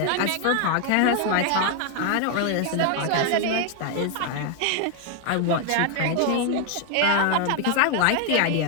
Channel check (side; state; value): both; different; correlation 0.00